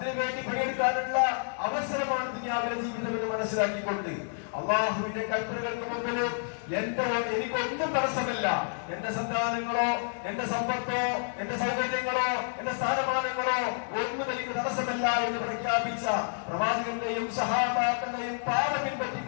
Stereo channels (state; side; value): silent; right; digital silence